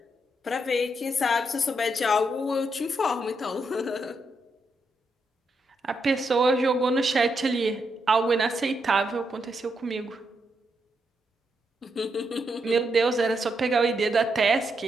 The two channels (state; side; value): normal; both; correlation 0.81